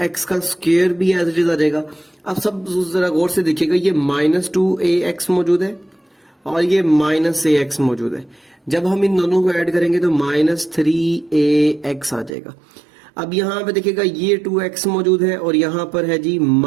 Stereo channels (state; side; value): drops out; left; at 12.3 s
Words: का स्क्वायर भी एज इट इज आ जाएगा। अब सब जरा गौर से देखिएगा, ये -2ax मौजूद है और ये -ax मौजूद है। जब हम इन दोनों को ऐड करेंगे तो -3ax आ जाएगा। अब यहाँ पे देखिएगा ये 2x मौजूद है और यहाँ पर है जी